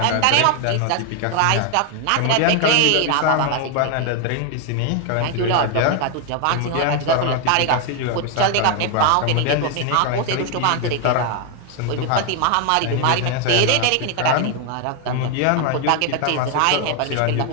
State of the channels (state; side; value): different; both; correlation 0.01